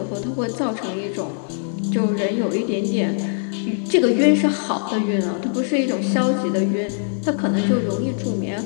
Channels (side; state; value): right; silent; 64 dB below the other